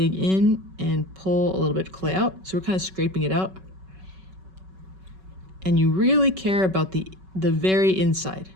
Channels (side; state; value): left; late; 5.3 ms